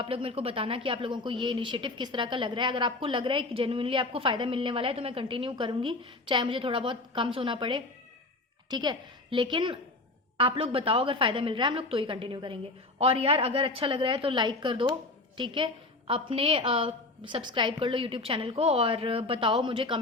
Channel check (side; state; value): right; quieter; 3.0 dB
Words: लोग मेरे को बताना कि आप लोगों को ये इनिशिएटिव किस तरह का लग रहा है। अगर आपको लग रहा है कि जेन्युइनली आपको फ़ायदा मिलने वाला है तो मैं कंटिन्यू करूँगी, चाहे मुझे थोड़ा बहुत कम सोना पड़े। ठीक है, लेकिन आप लोग बताओ अगर फ़ायदा मिल रहा है हम लोग तो ही कंटिन्यू करेंगे। और यार अगर अच्छा लग रहा है तो लाइक कर दो। ठीक है, अपने सब्सक्राइब कर लो यूट्यूब चैनल को और बताओ मुझे